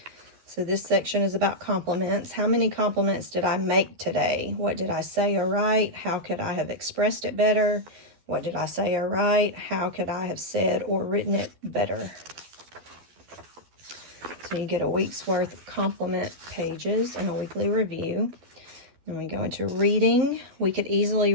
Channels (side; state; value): left; late; 12 ms